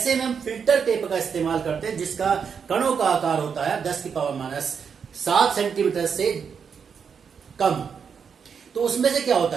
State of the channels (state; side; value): quieter; left; 6.6 dB